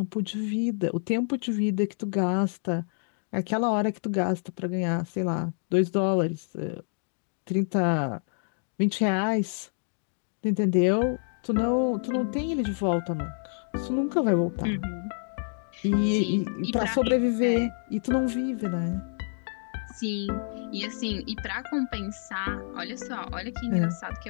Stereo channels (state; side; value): silent; right; digital silence